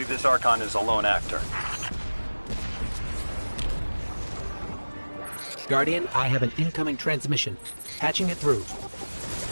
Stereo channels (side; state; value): both; inverted; correlation -1.00